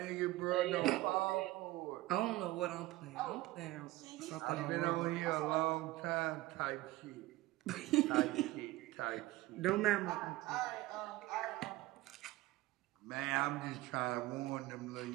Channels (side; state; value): left; quieter; 17.9 dB